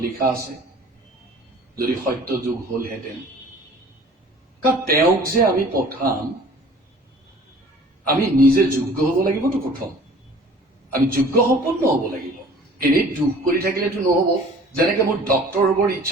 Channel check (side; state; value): both; normal; correlation 0.48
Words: লিখা আছে, যদি সত্য যুগ হলহেঁতেন, কাৰণ তেওঁক যে আমি পঠাম আমি নিজে যোগ্য হব লাগিবতো। প্ৰথম আমি যোগ্য সম্পন্ন হব লাগিব। এনেই দুখ কৰি থাকিলেতো নহব। যেনেকে মোৰ ডক্টৰ হবৰ